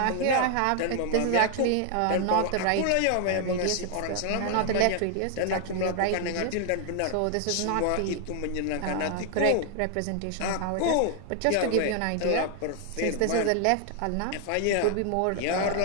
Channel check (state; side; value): different; both; correlation 0.00